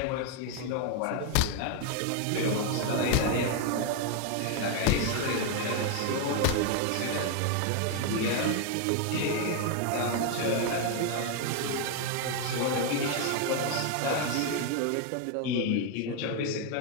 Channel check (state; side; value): different; both; correlation 0.01